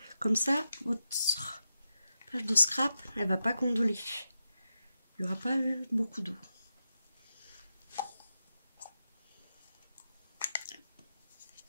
Comme ça, votre page de scrap, elle va pas gondoler. Il n'y aura pas beaucoup d'eau.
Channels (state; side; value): inverted; both; correlation -0.88